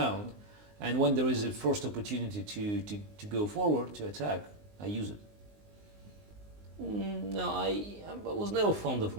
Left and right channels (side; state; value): left; late; 19 ms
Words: And when there is a first opportunity to go forward, to attack, I use it. No, I was never fond of